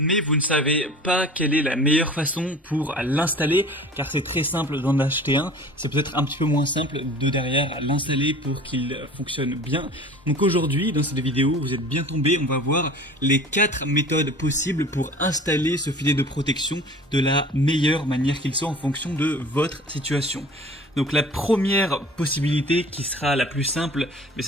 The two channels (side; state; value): both; normal; correlation 0.43